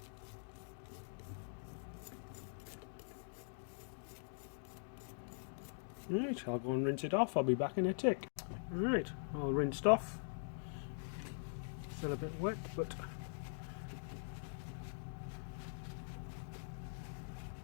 Right, I'll go and rinse it off. I'll be back in a tick. Right, all rinsed off. Still a bit wet, but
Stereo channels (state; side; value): silent; right; digital silence